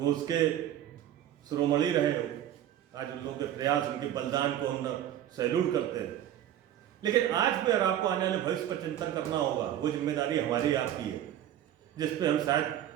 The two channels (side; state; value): left; quieter; 11.5 dB